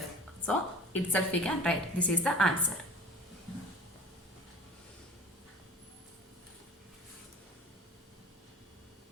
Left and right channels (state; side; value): normal; both; correlation 0.41